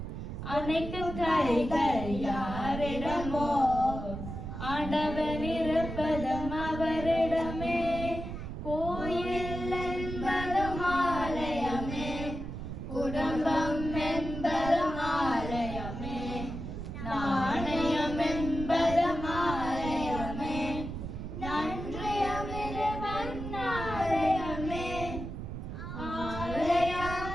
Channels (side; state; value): right; noise; rumble, 7 dB below the sound